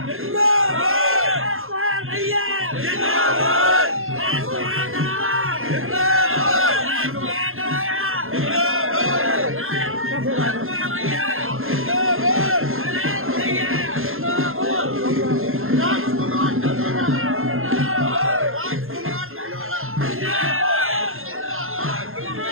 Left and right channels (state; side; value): late; left; 0.61 ms